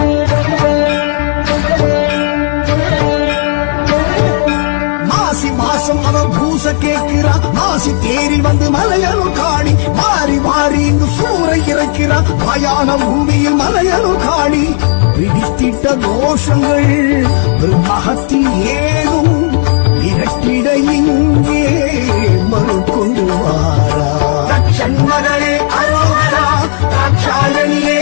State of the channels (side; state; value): right; silent; digital silence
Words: மாசம் அவ பூச கேட்கிறா மாசி தேரில் வந்து மலையனும் காணி மாறி மாறி இங்கு சூறை இறக்கிறா மயான பூமியில் மலையனும் காணி பிடித்திட்ட தோஷங்கள் மகத்தி ஏதும் இரட்டிட இங்கே மறுக்கொண்டு வாரா தட்சண்மகளே அரோகரா ராட்சாயணியே